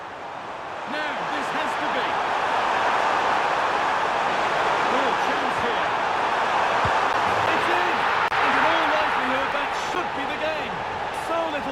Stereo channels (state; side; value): identical; both; correlation 1.00